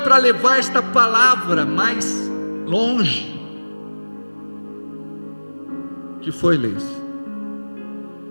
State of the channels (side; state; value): both; inverted; correlation -1.00